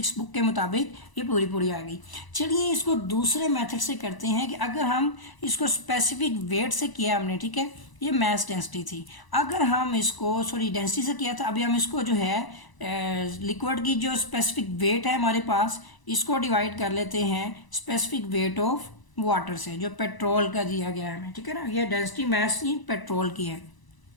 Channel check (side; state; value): right; late; 1.0 ms